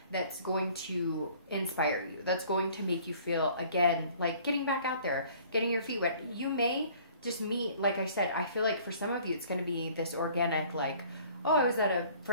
that's going to inspire you, that's going to make you feel, again, like getting back out there, getting your feet wet. You may just meet, like I said, I feel like for some of you, it's going to be this organic, like, oh, I was at a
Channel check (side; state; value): both; inverted; correlation -0.53